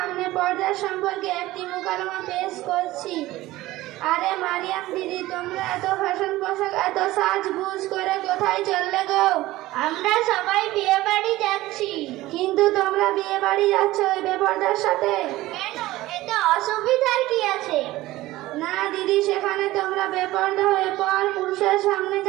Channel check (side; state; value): left; quieter; 17.3 dB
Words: পর্দা সম্পর্কে একটি মুকালমা পেশ করছি। আরে মারিয়াম দিদি, তোমরা এত ফ্যাশন পোশাক, এত সাজগুজ করে কোথায় চললে গো? আমরা সবাই বিয়ে বাড়ি যাচ্ছি। কিন্তু তোমরা বিয়ে বাড়ি যাচ্ছ ওই বেপর্দার সাথে? কেন, এতে অসুবিধার কি আছে? না দিদি, সেখানে তোমরা বেপর্দা হয়ে পর পুরুষের সামনে